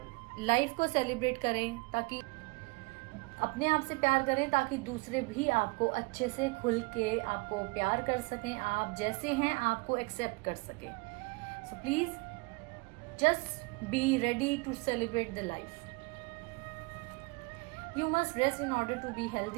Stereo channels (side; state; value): left; quieter; 27.6 dB